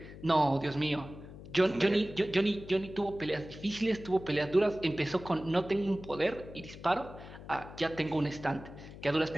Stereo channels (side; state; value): left; noise; hum, 15 dB below the sound